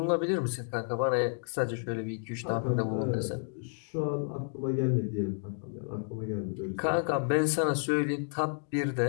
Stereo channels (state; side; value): silent; right; 57 dB below the other